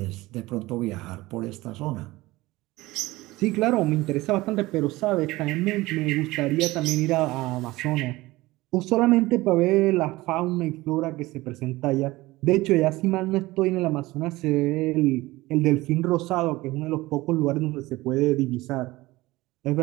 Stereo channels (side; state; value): left; quieter; 19.5 dB